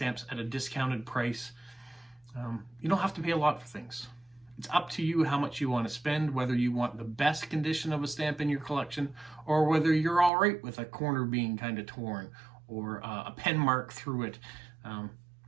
at a discounted price. You don't have to pay a lot for things. It's up to you how much you want to spend, whether you want the best condition of a stamp in your collection, or whether you're all right with a corner being kind of torn, or a pen mark through it.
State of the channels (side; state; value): left; drops out; at 10.3 s